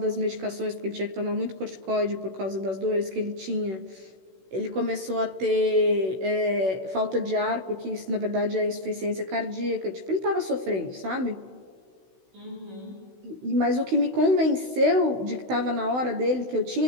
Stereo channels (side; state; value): left; late; 16 ms